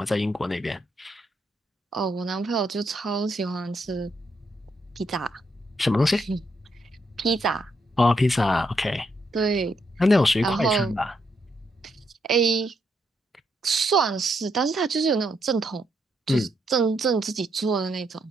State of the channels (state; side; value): normal; both; correlation 0.77